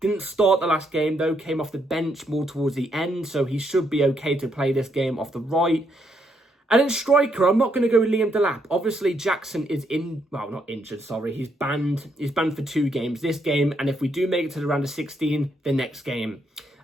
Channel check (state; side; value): normal; both; correlation 0.75